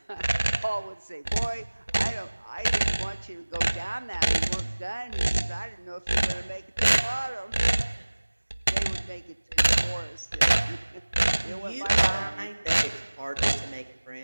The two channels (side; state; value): both; inverted; correlation -1.00